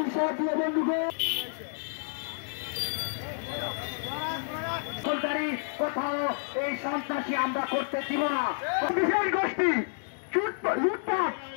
সাথী বন্ধুগণ, কোথাও এই সন্ত্রাসী আমরা করতে দিব না। বিশেষ গোষ্ঠী লুটপাট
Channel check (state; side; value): silent; right; digital silence